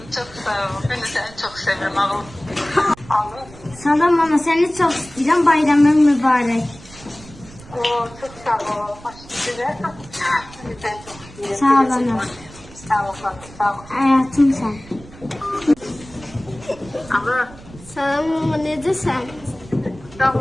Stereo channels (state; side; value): noise; right; rumble, 19 dB below the sound